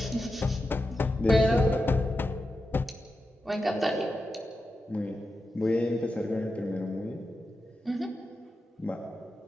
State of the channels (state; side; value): normal; both; correlation 0.89